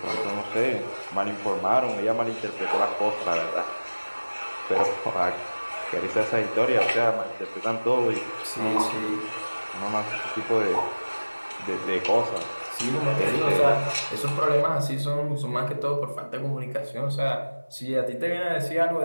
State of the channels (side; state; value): both; inverted; correlation -1.00